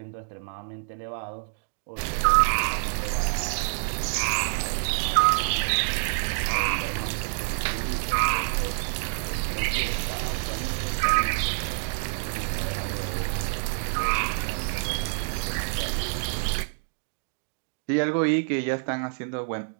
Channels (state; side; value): silent; left; digital silence